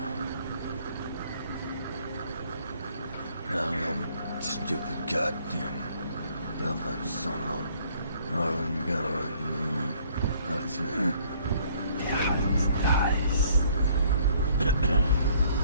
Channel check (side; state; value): both; inverted; correlation -0.61